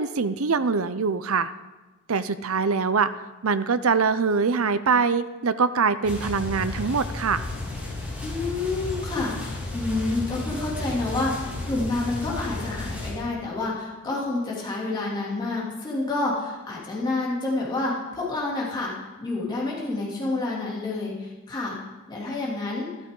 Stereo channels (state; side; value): normal; both; correlation 0.25